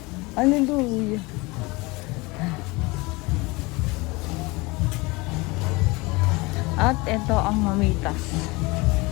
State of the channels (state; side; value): quieter; right; 24.4 dB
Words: Hallelujah. At ito ang mamitas.